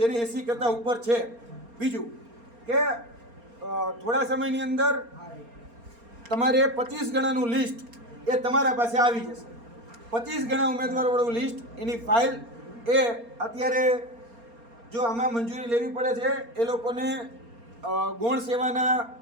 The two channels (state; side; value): late; left; 4.3 ms